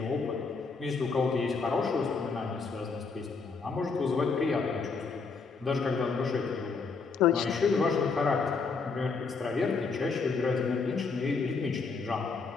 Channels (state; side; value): quieter; right; 4.7 dB